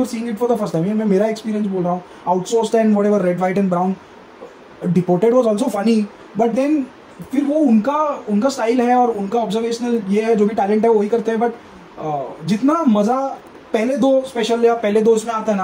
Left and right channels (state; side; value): identical; both; correlation 1.00